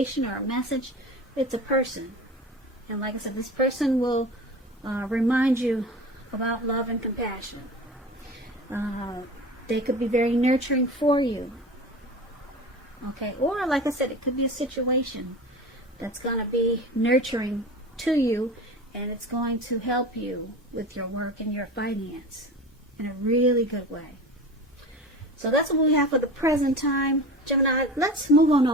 or a message, it's a person. And like I said, this person will remind you about love and compassion. They could be very nurturing for you. Okay, or like I said, it could be a situation that's going to be nurturing to you, and it's going to help you with your work and your finance in a really good way. So that's what we have for the present time. Gemini, let's move on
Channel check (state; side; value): normal; both; correlation 0.33